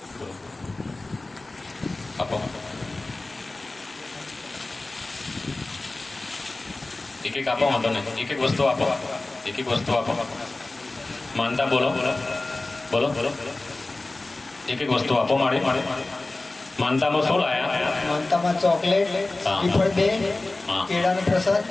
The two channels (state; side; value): quieter; right; 3.0 dB